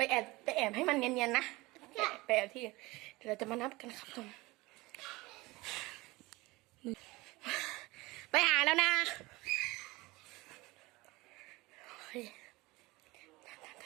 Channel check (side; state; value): left; quieter; 21.7 dB